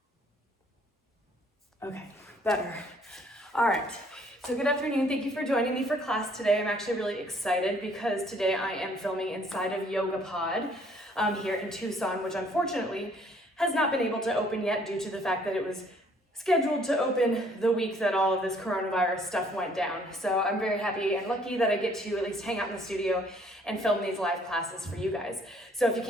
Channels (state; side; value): normal; both; correlation 0.61